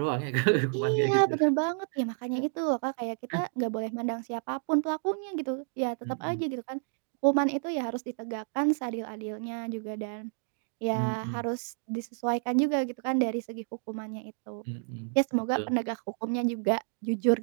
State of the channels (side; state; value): left; silent; 58 dB below the other